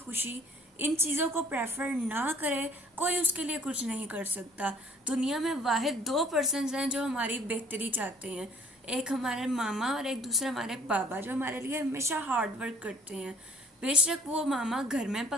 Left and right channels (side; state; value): both; normal; correlation 0.53